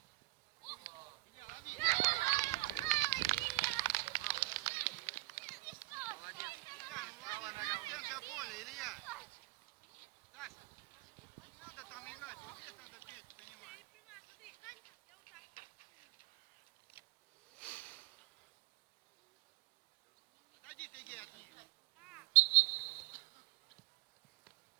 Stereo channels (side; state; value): left; quieter; 22.6 dB